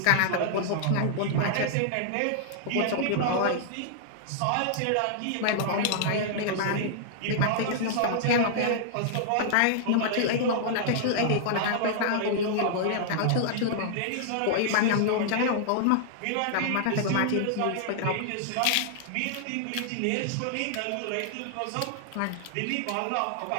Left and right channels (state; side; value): different; both; correlation -0.01